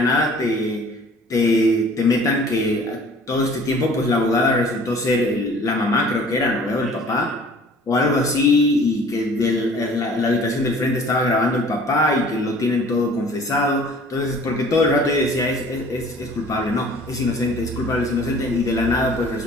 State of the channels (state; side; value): normal; both; correlation 0.50